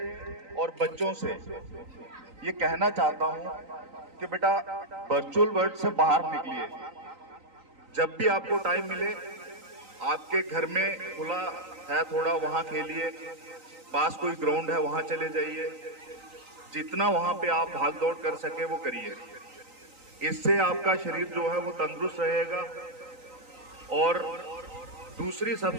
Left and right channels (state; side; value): late; left; 3.9 ms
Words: और बच्चों से ये कहना चाहता हूँ कि बेटा वर्चुअल वर्ल्ड से बाहर निकलिए। जब भी आपको टाइम मिले, आपके घर में खुला है थोड़ा, वहाँ खेलिए, पास कोई ग्राउंड है वहाँ चले जाइए, जितना वहाँ पे आप भाग दौड़ कर सके वो करिए। इससे आपका शरीर जो है वो तंदुरुस्त रहेगा। और दूसरी